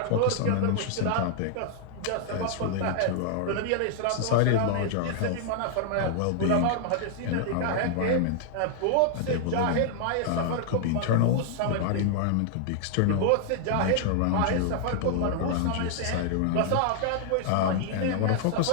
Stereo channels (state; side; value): different; both; correlation -0.01